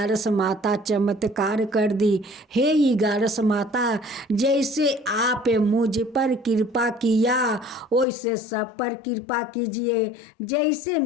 माता चमत्कार कर दी। हे ग्यारस माता, जैसे आप मुझ पर कृपा किया वैसे सब पर कृपा कीजिए। जैसे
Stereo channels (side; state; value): right; drops out; at 8.1 s